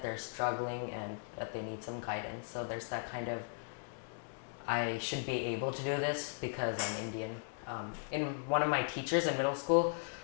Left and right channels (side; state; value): right; silent; digital silence